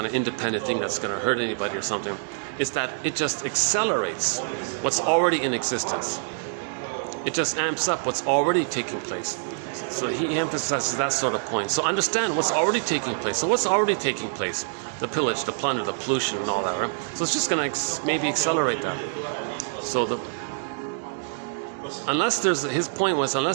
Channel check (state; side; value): silent; left; digital silence